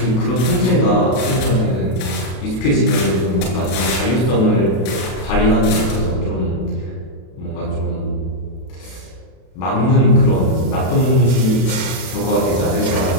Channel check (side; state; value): right; late; 32 ms